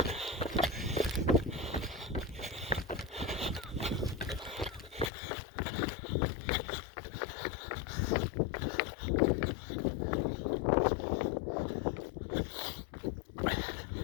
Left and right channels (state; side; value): drops out; right; at 5.1 s